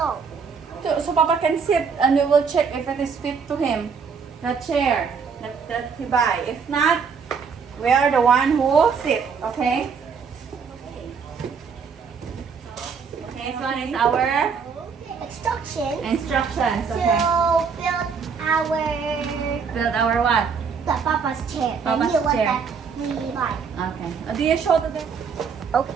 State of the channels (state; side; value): quieter; left; 5.9 dB